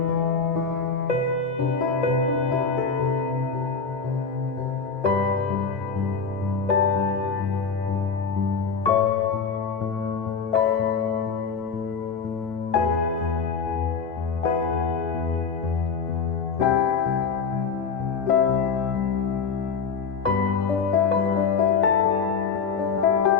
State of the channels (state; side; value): quieter; right; 5.5 dB